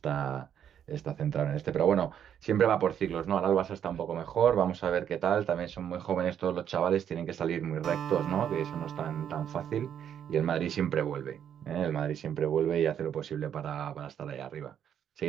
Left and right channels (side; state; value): left; quieter; 9.1 dB